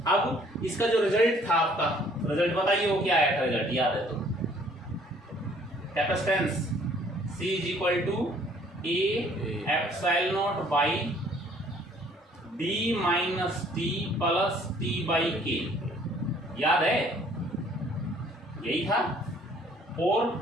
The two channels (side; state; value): both; normal; correlation 0.59